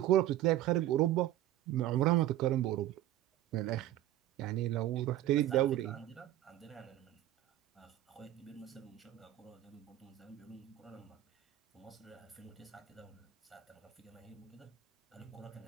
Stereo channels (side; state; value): left; quieter; 13.6 dB